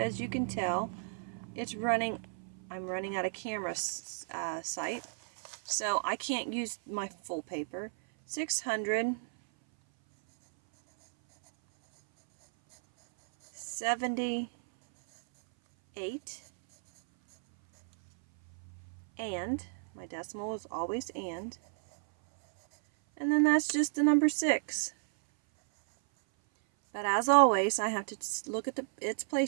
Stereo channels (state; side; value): silent; left; 56 dB below the other